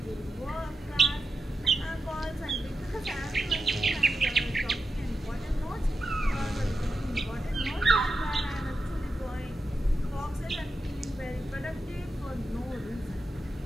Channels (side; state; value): both; normal; correlation 0.89